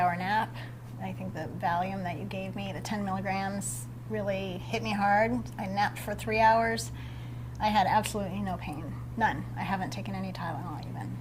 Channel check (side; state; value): both; identical; correlation 1.00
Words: nap. I think the Valium that you gave me, the 10 milligrams, really hit me hard. I napped for 3 hours. I had absolutely no pain, none. I haven't taken any Tylenol even.